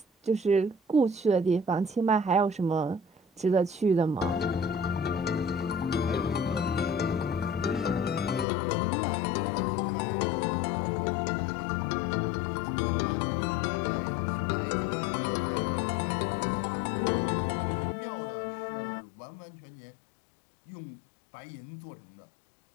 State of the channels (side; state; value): right; drops out; at 8.5 s